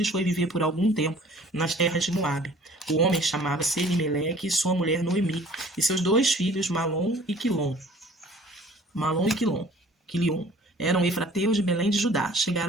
foi viver por algum tempo nas terras de Moabe. O homem chamava-se Elimeleque e sua mulher Noemi, e seus 2 filhos, Malom e Quilom. Malom e Quilion. Eram efrateus de Belém de Judá.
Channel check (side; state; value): both; normal; correlation 0.51